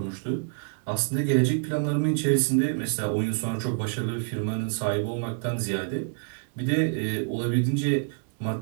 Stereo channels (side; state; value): left; silent; 59 dB below the other